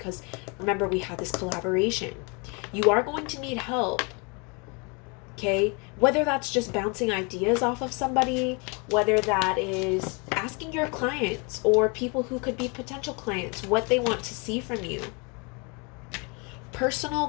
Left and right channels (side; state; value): right; quieter; 31.9 dB